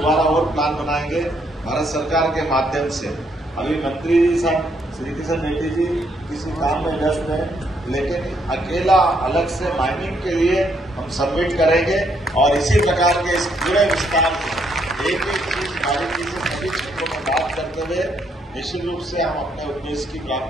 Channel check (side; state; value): both; normal; correlation 0.73